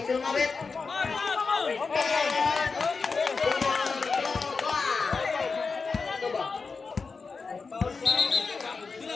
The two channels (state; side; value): quieter; right; 4.6 dB